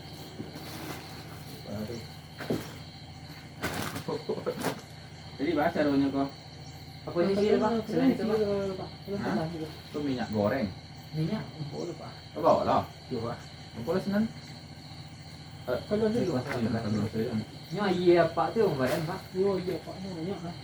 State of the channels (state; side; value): identical; both; correlation 1.00